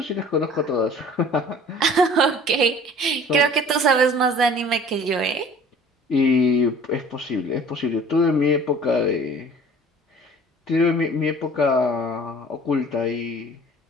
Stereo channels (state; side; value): normal; both; correlation 0.48